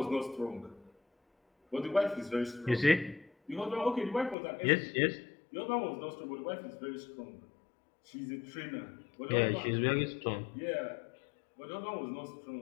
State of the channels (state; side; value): drops out; right; at 4.4 s